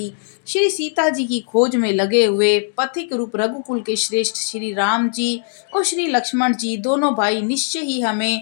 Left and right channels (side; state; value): right; silent; digital silence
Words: श्री सीता जी की खोज में लगे हुए पथिक रूप रघुकुल के श्रेष्ठ श्री राम जी और श्री लक्ष्मण जी दोनों भाई निश्चय ही